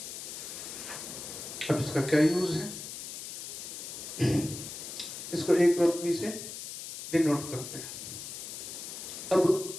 अब इसका क्या यूज है, इसको एक क्रॉस बी से डिनोट करते हैं। अब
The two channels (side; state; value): left; noise; hiss, 9 dB below the sound